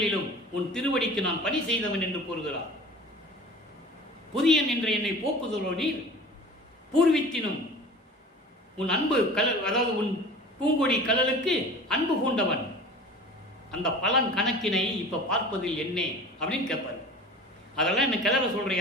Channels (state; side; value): normal; both; correlation 0.40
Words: உன் திருவடிக்கு நான் பணி செய்தவன் என்று கூறுகிறார். புதியன் என்ற என்னை போக்குதலோ நீர், பூர்வித்தினும் உன் அன்பு கலல், அதாவது உன் பூங்கொடி கலலுக்கு அன்பு கூண்டவன். அந்த பலன் கணக்கினை இப்ப பார்ப்பதில் என்ன அப்படின்னு கேட்பாரு. அதெல்லாம் என்ன கிளற